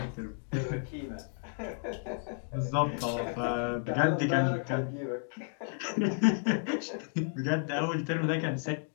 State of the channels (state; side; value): silent; right; 56 dB below the other